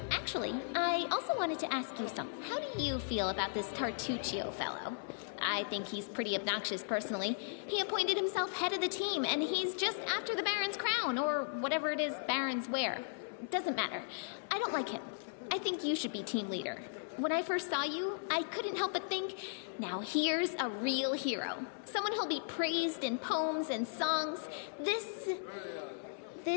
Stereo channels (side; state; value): right; silent; 53 dB below the other